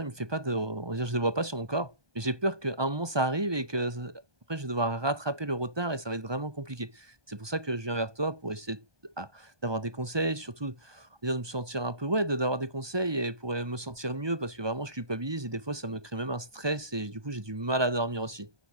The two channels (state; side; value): late; left; 1.2 ms